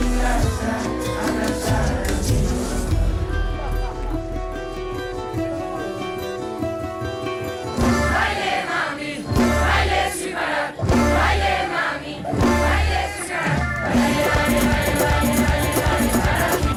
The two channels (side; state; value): both; identical; correlation 1.00